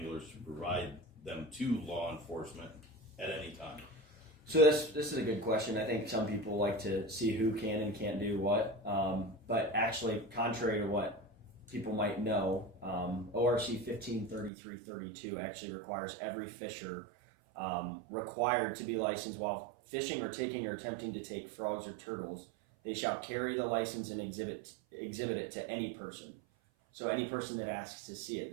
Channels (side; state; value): left; drops out; at 14.5 s